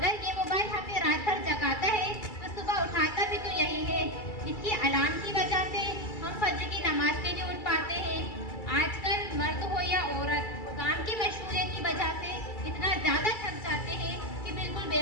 ये मोबाइल हमें रात भर जगाता है तो सुबह उठाता भी तो यही है। इसकी अलार्म की वजह से हम फजर की नमाज के लिए उठ पाते हैं। आजकल मर्द हो या औरत, काम की मशगूलियत की वजह से इतना ज़्यादा थक जाते हैं कि बिल्कुल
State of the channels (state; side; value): late; right; 2.3 ms